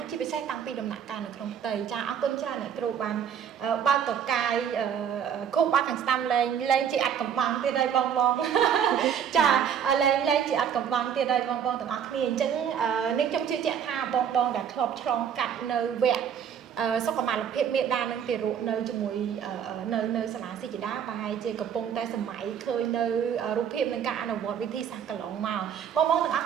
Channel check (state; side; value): quieter; left; 8.3 dB